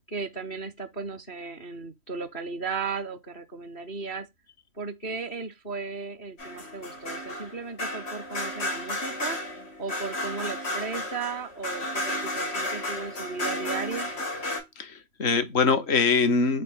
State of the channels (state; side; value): late; right; 3.1 ms